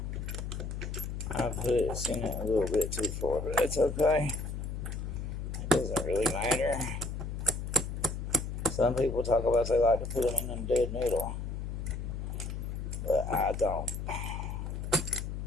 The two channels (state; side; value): noise; left; hum, 5 dB below the sound